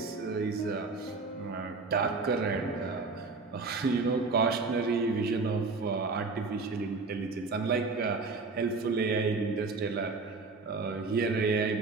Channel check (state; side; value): quieter; left; 4.0 dB